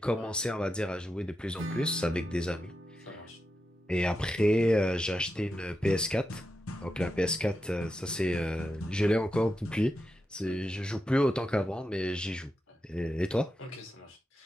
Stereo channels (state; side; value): normal; both; correlation 0.88